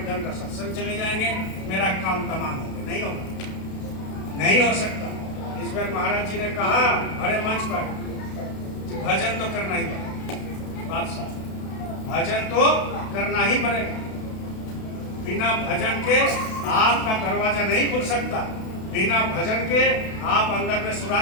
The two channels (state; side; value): late; right; 32 ms